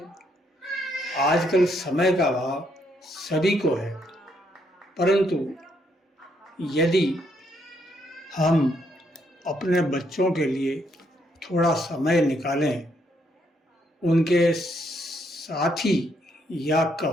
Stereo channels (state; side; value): normal; both; correlation 0.73